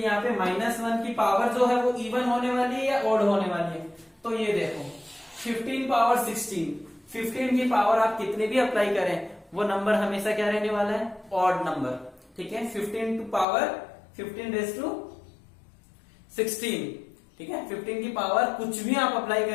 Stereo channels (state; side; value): drops out; right; at 13.5 s